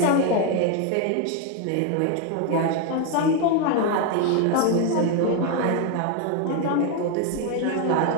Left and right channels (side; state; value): both; different; correlation 0.01